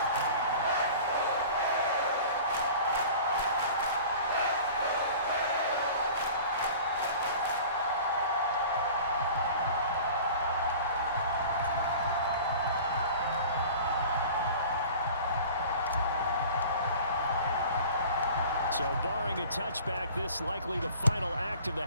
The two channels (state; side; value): inverted; both; correlation -0.42